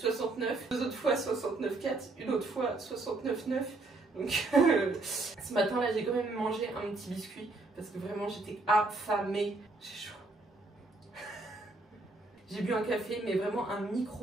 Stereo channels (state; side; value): quieter; left; 3.2 dB